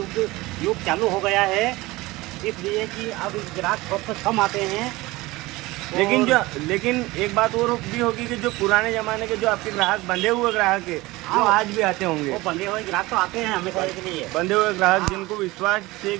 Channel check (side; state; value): left; quieter; 20.5 dB